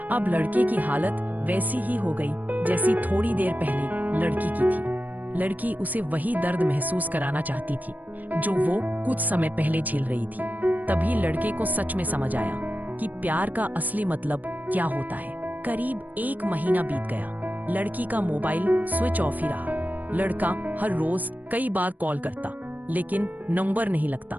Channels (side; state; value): left; late; 0.082 ms